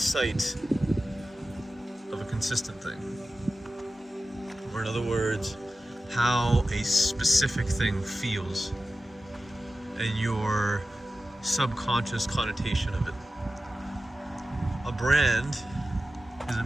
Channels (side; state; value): both; normal; correlation 0.94